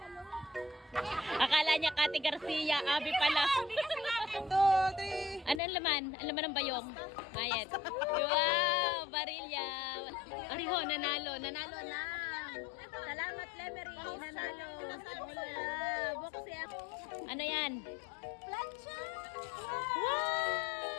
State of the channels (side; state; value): right; drops out; at 5.6 s